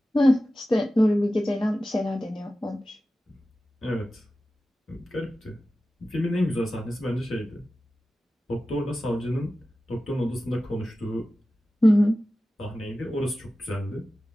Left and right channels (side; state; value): both; normal; correlation 0.95